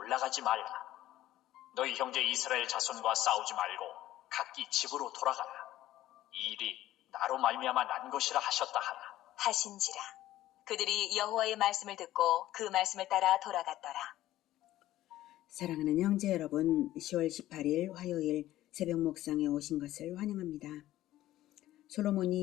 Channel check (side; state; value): right; quieter; 14.5 dB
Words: 말라. 너희 형제 이스라엘 자손과 싸우지 말고 각기 집으로 돌아가라. 이 일이 나로 말미암아 난 것이라 하셨다 하라. 하신지라. 그들이 여호와의 말씀을 듣고 그 말씀을 따라 돌아갔더라. 사랑하는 형제 여러분, 10월 18일 화요일 새벽 목상에 오신 것을 환영합니다.